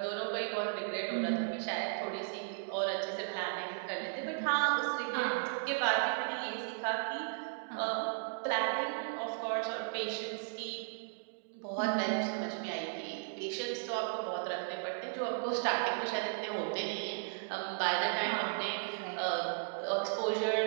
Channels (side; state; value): left; silent; digital silence